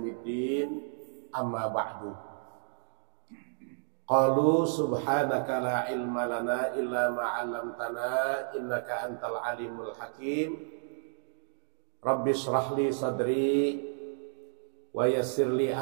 amma ba'du. Qalu subhanaka la ilma lana illa ma 'allamtana innaka antal alimul hakim. Rabbi shrah li sadri wa yassir li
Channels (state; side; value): silent; left; digital silence